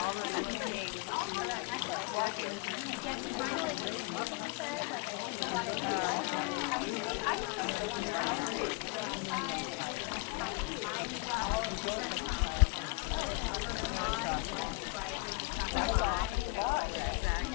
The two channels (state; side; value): quieter; right; 26.9 dB